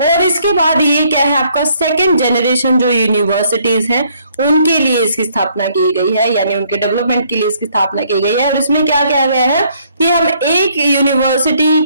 और इसके बाद ये क्या है आपका सेकंड जनरेशन जो यूनिवर्सिटीज हैं उनके लिए इसकी स्थापना की गई है, यानी उनके डेवलपमेंट के लिए इसकी स्थापना की गई है। और इसमें क्या किया गया है कि हम एक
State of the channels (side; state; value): both; inverted; correlation -0.66